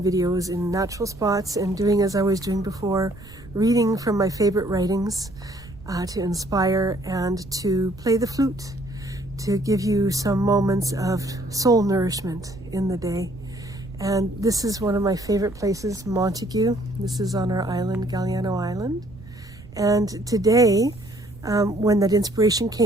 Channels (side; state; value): right; noise; rumble, 19 dB below the sound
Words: videos in natural spots and doing as I was doing before, reading from my favorite writings to inspire and to play the flute, to give you some moments of soul nourishment in the day. And this is one of my favorite places, Montague. This is on our island, Galliano Island. And today, when that inspiration